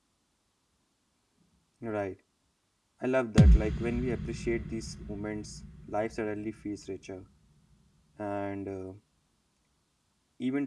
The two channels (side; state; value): both; identical; correlation 1.00